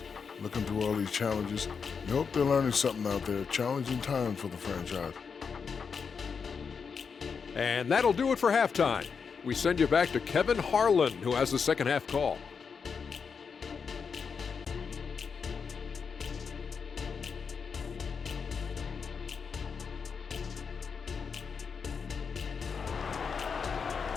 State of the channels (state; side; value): quieter; right; 5.9 dB